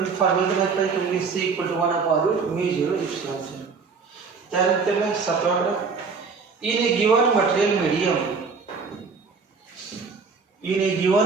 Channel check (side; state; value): left; quieter; 5.0 dB